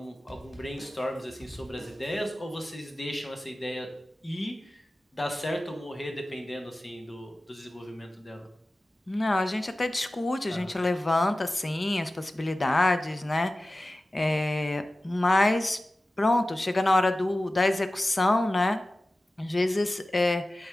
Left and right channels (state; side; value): normal; both; correlation 0.96